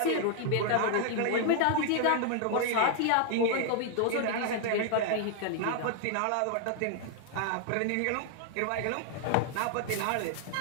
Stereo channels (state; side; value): different; both; correlation 0.00